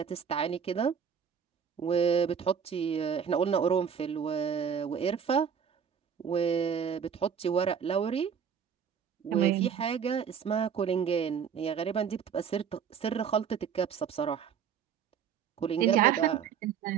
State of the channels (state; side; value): quieter; left; 7.5 dB